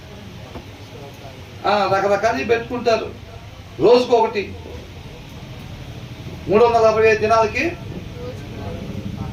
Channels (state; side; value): identical; both; correlation 1.00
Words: పెట్టుకుంటారు. రోజుకొకటి 365 దినాలకి